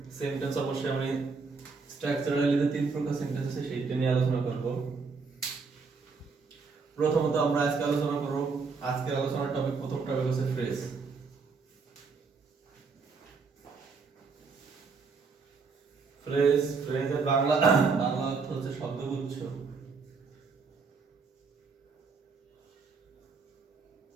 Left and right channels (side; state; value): left; quieter; 4.8 dB